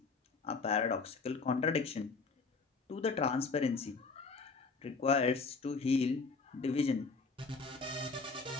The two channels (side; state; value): right; quieter; 4.4 dB